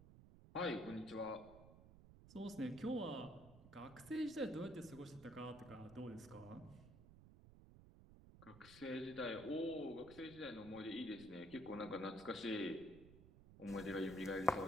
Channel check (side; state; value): right; noise; rumble, 18 dB below the sound